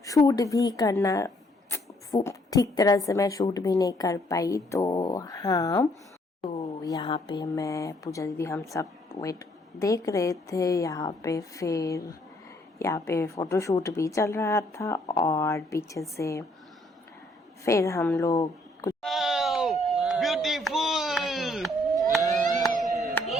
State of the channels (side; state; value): both; normal; correlation 0.67